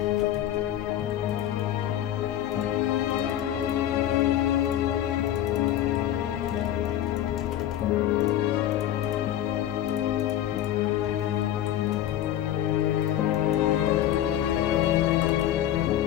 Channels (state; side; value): quieter; right; 11.9 dB